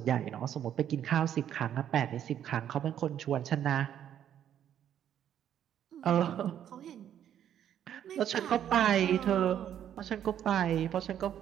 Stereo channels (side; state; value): left; quieter; 10.1 dB